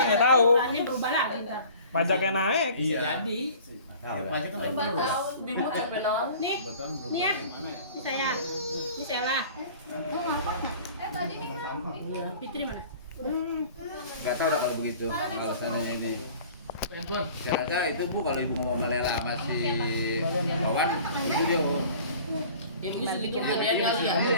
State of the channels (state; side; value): inverted; both; correlation -0.46